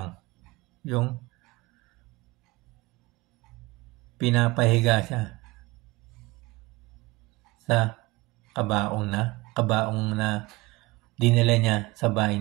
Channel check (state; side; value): quieter; left; 22.0 dB